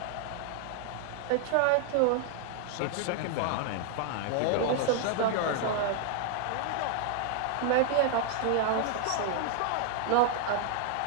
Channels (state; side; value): different; both; correlation 0.00